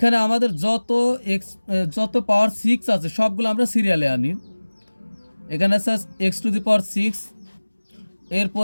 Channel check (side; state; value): both; inverted; correlation -1.00